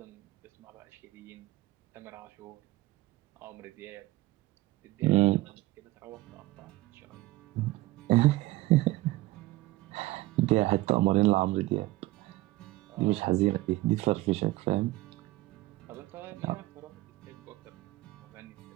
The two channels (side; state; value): left; quieter; 18.3 dB